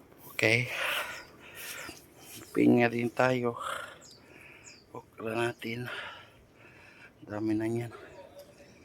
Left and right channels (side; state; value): both; identical; correlation 1.00